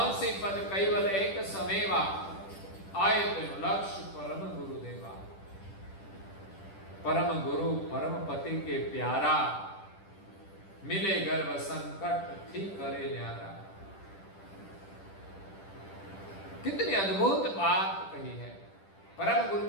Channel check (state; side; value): late; right; 10 ms